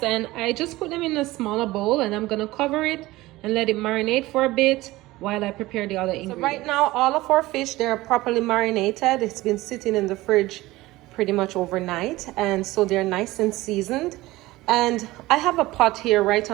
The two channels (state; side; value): quieter; left; 18.7 dB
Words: and I just put them in a smaller bowl, and I'm gonna cover it and let it marinate for a bit while I prepare the other ingredients. So right now all of our fish, they're properly marinated. It's been sitting in the fridge pretty much overnight, and so they're nice and seasoned. And I have a pot here right